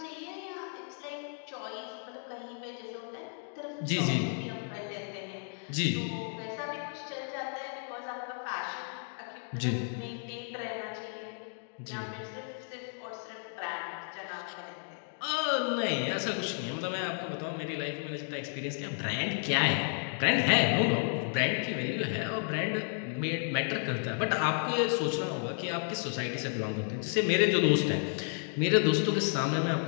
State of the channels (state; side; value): silent; right; 55 dB below the other